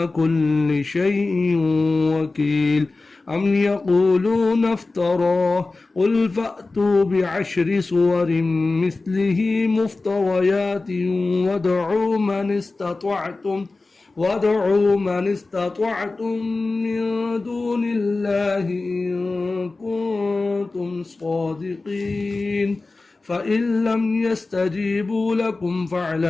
كل شيء وكيل أم يقولون افتراه قل فأتوا بعشر سور مثله مفتريات وادعوا من استطعتم من دون الله إن كنتم صادقين فإن لم يستجيبوا لكم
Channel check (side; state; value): right; quieter; 3.5 dB